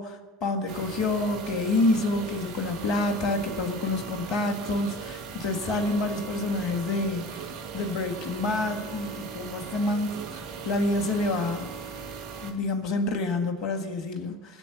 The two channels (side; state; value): both; normal; correlation 0.40